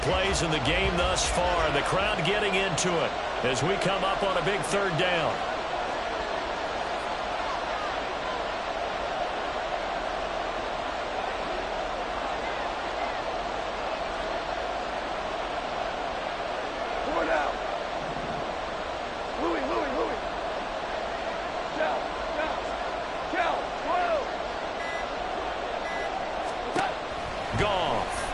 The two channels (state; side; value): identical; both; correlation 1.00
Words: plays in the game thus far. The crowd getting into it as we come up on a big third down.